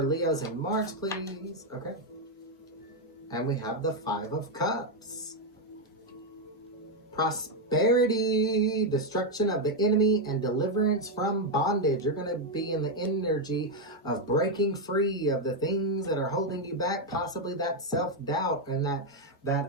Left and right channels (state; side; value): normal; both; correlation 0.03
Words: Leos in March, please. Okay. And we have the 5 of Cups. Prosperity, destruction of the enemy, and deliverance from bondage. You're going to be in the energy of breaking free of the things that are holding you back, possibly that self-doubt and